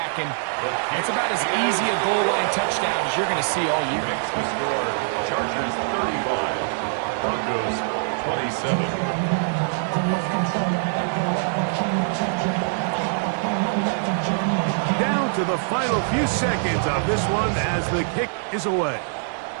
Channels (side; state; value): left; silent; digital silence